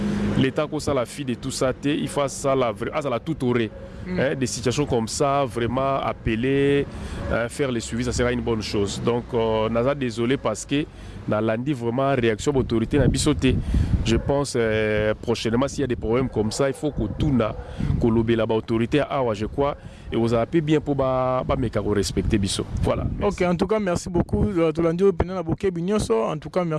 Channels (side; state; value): both; identical; correlation 1.00